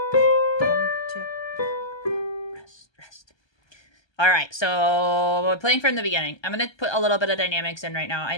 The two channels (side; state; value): right; late; 1.2 ms